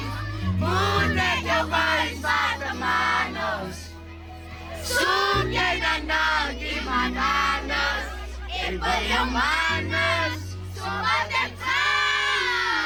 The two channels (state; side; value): identical; both; correlation 1.00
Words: Munay your guys sa tamanos. Sunyay na nagimananas. Iba yung manas. Sumatek ka.